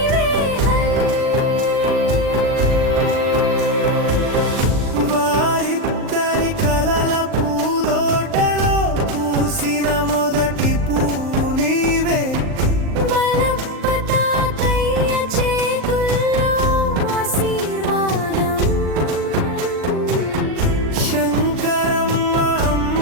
వారిద్దరి కలల పూదోటలో పూసిన మొదటి పువ్వు నీవే, మలప్ప తాతయ్య చేతుల్లో ఆశీర్వాదం, శంకరమ్మ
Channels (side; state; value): left; late; 39 ms